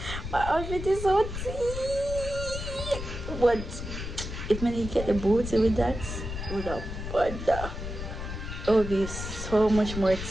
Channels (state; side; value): noise; left; rumble, 7 dB below the sound